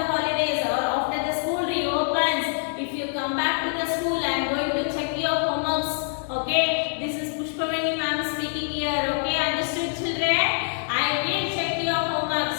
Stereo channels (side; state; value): right; silent; digital silence